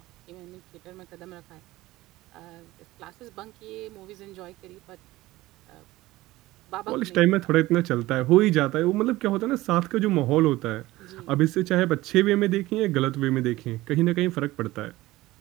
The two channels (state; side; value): quieter; left; 18.0 dB